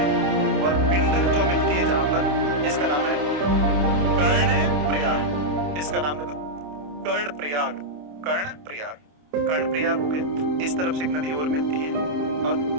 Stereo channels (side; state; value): left; late; 27 ms